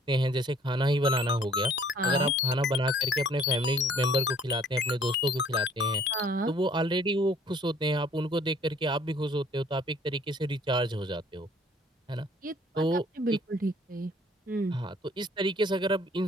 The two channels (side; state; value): both; normal; correlation 0.58